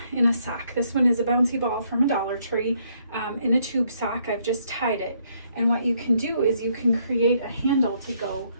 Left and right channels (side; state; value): both; inverted; correlation -0.71